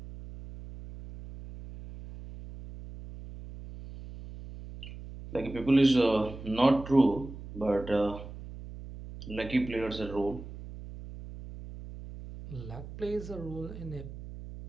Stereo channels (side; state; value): right; noise; hum, 13 dB below the sound